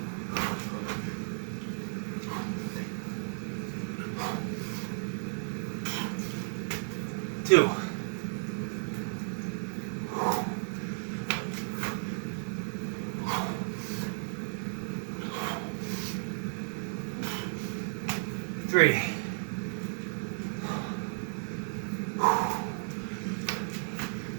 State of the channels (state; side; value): silent; left; digital silence